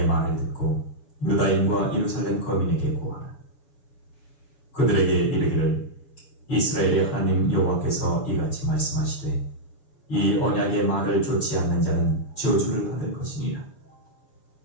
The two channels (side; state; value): right; late; 6.9 ms